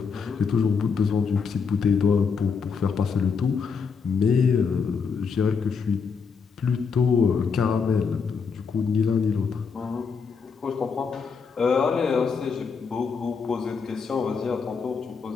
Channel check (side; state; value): right; quieter; 5.6 dB